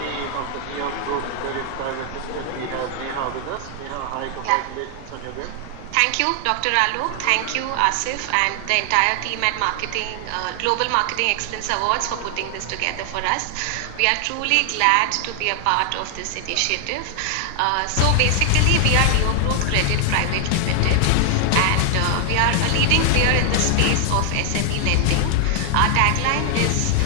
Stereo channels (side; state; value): both; different; correlation 0.00